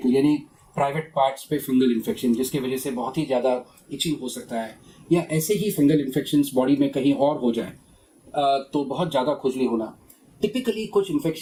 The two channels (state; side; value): identical; both; correlation 1.00